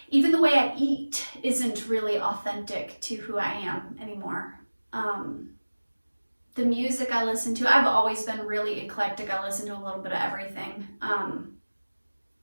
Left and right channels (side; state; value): both; inverted; correlation -1.00